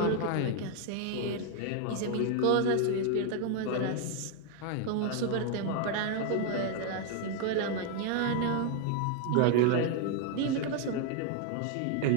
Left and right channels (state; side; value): different; both; correlation 0.00